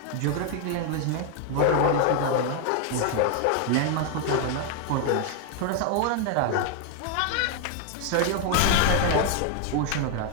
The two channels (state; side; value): different; both; correlation 0.00